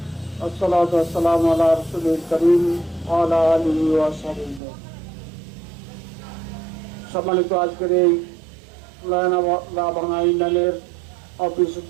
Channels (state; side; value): drops out; left; at 4.6 s